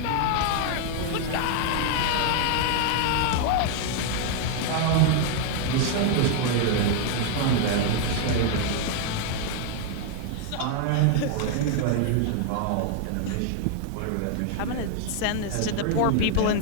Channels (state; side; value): different; both; correlation 0.00